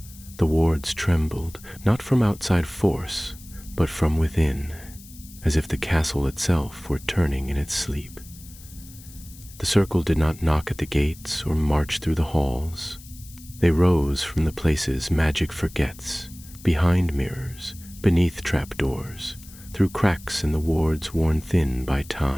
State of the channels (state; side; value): noise; left; hiss, 20 dB below the sound